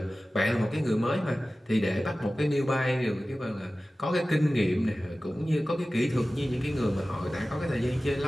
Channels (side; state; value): both; normal; correlation 0.96